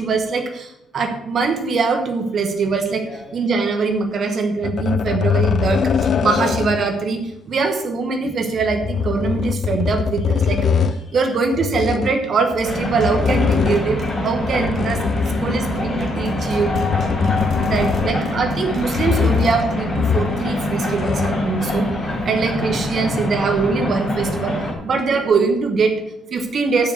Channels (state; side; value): normal; both; correlation 0.71